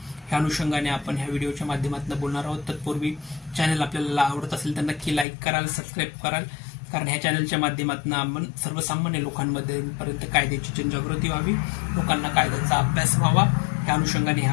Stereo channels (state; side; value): drops out; right; at 5.2 s